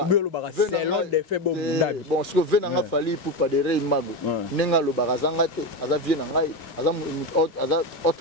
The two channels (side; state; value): right; late; 2.4 ms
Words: Bon, ce que venanga Fali Poupa de Rey Mago. Nenga lo barazangate, aza vie na ngai, aza